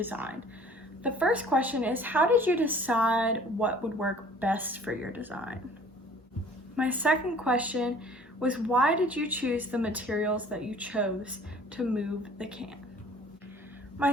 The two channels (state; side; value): normal; both; correlation 0.51